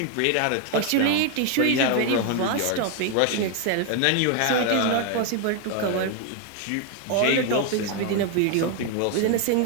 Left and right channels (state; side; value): different; both; correlation 0.01